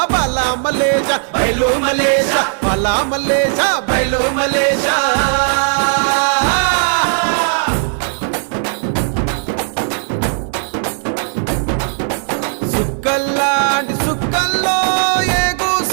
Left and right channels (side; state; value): left; silent; 57 dB below the other